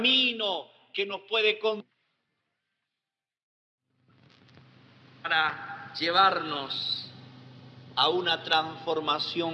que nos puede conducir para llevarnos a una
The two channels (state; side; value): identical; both; correlation 1.00